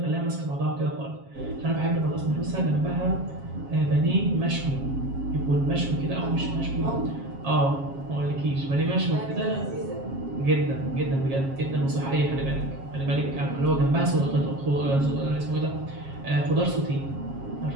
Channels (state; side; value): late; left; 7.3 ms